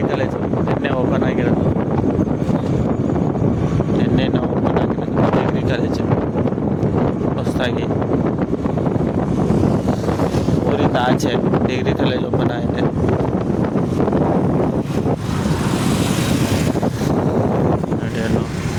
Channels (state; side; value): identical; both; correlation 1.00